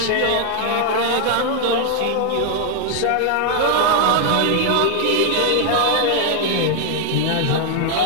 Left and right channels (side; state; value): both; different; correlation 0.00